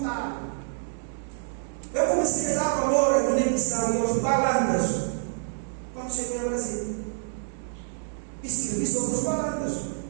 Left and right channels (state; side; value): silent; left; digital silence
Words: Eu comecei a dar valor à Guiné-Bissau e aos balandas quando cheguei ao Brasil. E escrevi sobre os balandas.